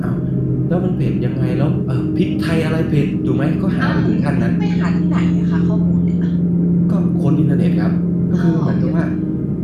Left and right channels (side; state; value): both; identical; correlation 1.00